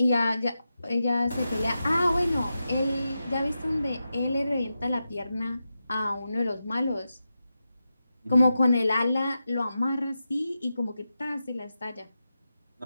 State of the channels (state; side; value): inverted; both; correlation -0.90